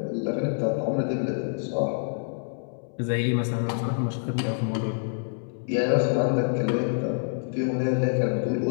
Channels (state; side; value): silent; right; 60 dB below the other